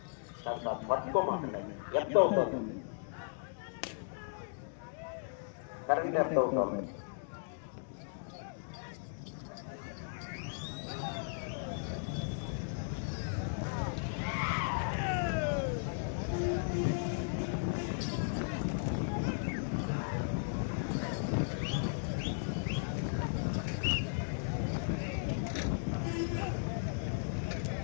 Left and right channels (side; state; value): right; silent; digital silence